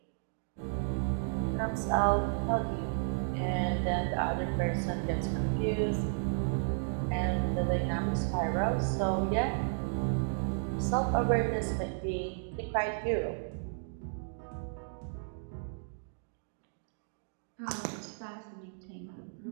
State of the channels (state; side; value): silent; left; digital silence